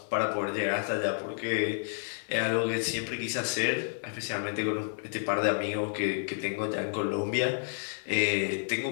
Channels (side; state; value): right; silent; digital silence